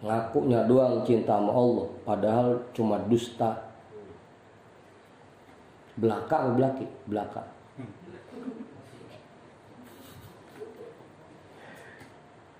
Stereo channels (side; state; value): both; identical; correlation 1.00